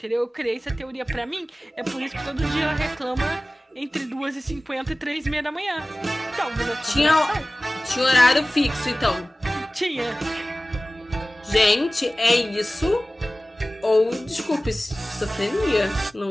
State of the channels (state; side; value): normal; both; correlation 0.97